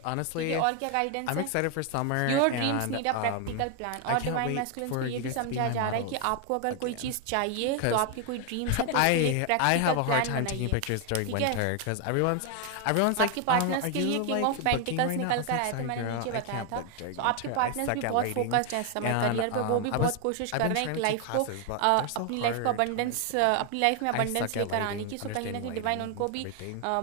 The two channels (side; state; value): both; different; correlation 0.01